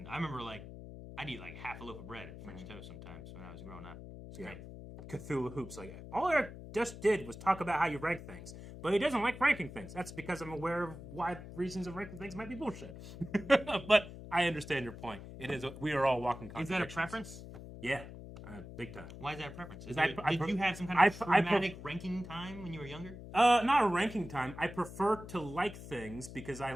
I remember like I'd eat like half a loaf of bread at French toast sometimes when I was growing up. It's Yeah. great. Cthulhu Hoops, like all Eric just did was talk about how you rank things, but he doesn't like ranking things. That's because I'm aware of why reasons of ranking things might be bullshit. But I understand your point. It is. We are all walking. Is that a contradictions. preference? Yeah, big time. Why is that a preference? Is I- I Did pre- you have some kind I of pre- I pre- traumatic ranking time when you were younger? Not a ranking time. I prefer to like things because I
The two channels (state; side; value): noise; left; hum, 13 dB below the sound